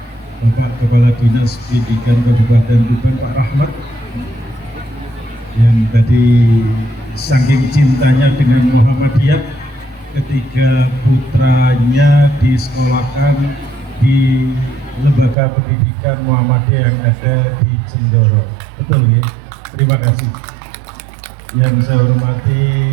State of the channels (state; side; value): drops out; left; at 15.4 s